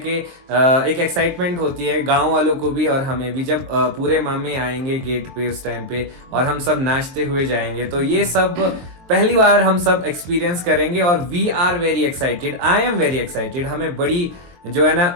एक एक्साइटमेंट होती है गांव वालों को भी और हमें भी, जब पूरे मामे आएंगे गेट पे उस टाइम पे और हम सब नाचते हुए जाएंगे। तो ये सब पहली बार हम सब एक्सपीरियंस करेंगे और we are very excited. I am very excited. हमें बड़ी जो है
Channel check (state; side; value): late; left; 23 ms